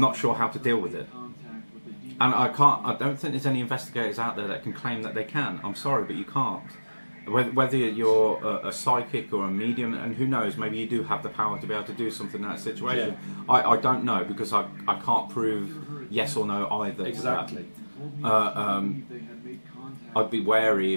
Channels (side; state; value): both; inverted; correlation -1.00